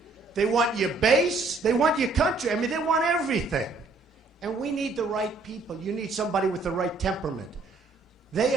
They want your base. They want your country. I mean, they want everything. And we need the right people. You need somebody with the right temperament. They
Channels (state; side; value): quieter; left; 3.6 dB